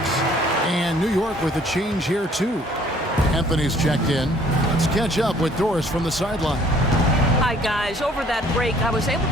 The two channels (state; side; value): normal; both; correlation 0.59